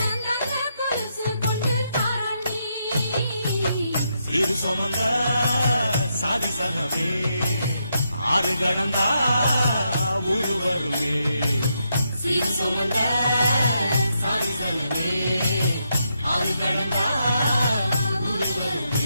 இரு சுமந்த சாதி சனவே ஆறு கடந்தா ஊரு வருமே சீர் சுமந்த சாதி சனவே ஆறு கடந்தா ஊரு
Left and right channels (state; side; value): inverted; both; correlation -0.81